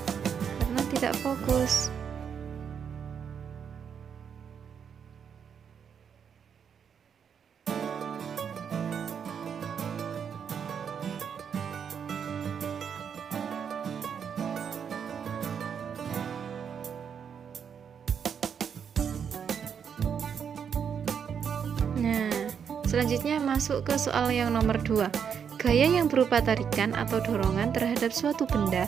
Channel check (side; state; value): left; quieter; 7.4 dB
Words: karena tidak fokus. Nah, selanjutnya masuk ke soal yang nomor 2. Gaya yang berupa tarikan atau dorongan terhadap suatu benda